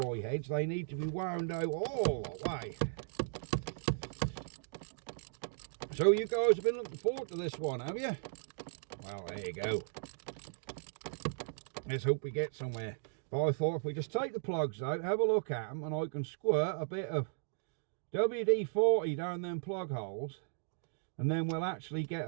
heads, they need to be wound out all the way. So you guys have been looking forward to this one, have you? Well, there you go. Let's hope we get somewhere. But I thought if we just take the plugs out, have a look at them, and I can squirt a bit of WD-40 down them plug holes, and then we'll actually get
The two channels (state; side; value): silent; left; digital silence